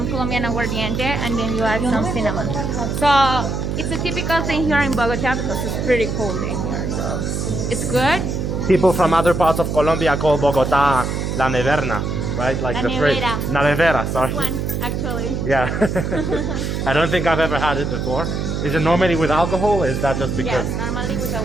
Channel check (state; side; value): noise; right; hum, 2 dB below the sound